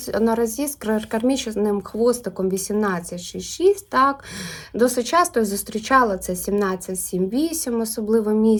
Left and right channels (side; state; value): both; identical; correlation 1.00